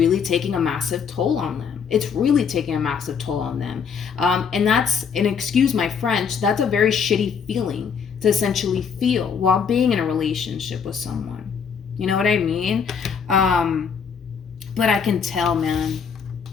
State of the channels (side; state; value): right; quieter; 6.6 dB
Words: taking a massive toll on them. It's really taking a massive toll on them. And that's, and excuse my French, that's a very shitty feeling to essentially feel while being in a relationship with someone. You know what I mean? But I can tell, man.